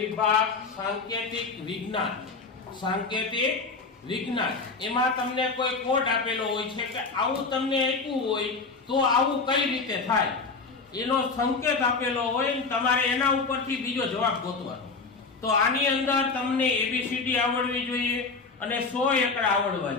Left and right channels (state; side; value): quieter; right; 4.3 dB